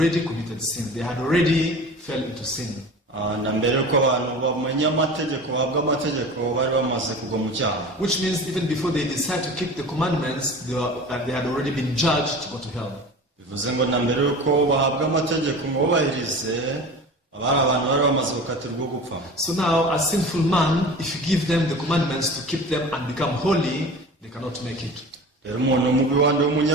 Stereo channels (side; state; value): both; normal; correlation 0.36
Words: committed sin. They had already fell into sin. Na mbere uko abantu bamenya amategeko bahabwa amategeko bari bamaze kugwa mu cyaha. Which means even before they decide to keep the commandments, they had already been judged to go to hell. Bivuze ngo na mbere uko bahabwa amategeko ngo bubahirize abari abantu bari bamaze gukatirwa gupfa. So now a sinful man, if you give them the commandments to keep them and become holy, they cannot make it. Rero umuntu mubi wandi